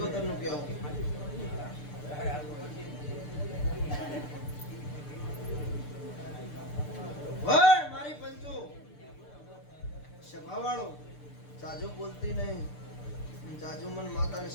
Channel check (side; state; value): right; late; 6.8 ms